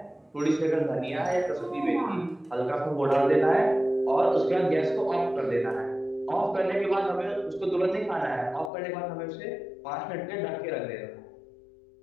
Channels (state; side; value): drops out; right; at 8.7 s